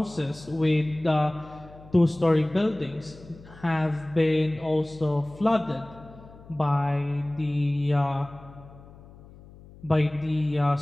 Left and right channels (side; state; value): left; noise; hum, 21 dB below the sound